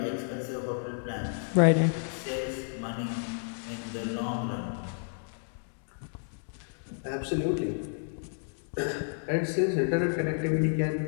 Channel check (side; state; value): right; silent; digital silence